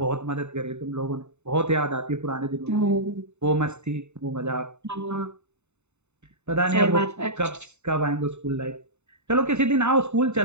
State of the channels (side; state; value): left; late; 0.82 ms